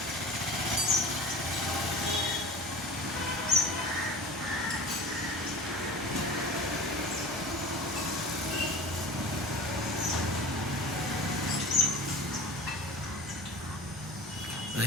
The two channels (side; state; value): both; normal; correlation 0.36